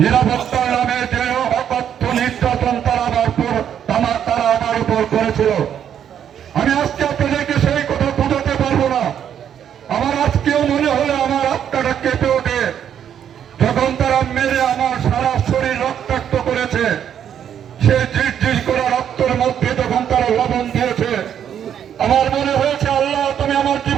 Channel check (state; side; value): quieter; left; 9.2 dB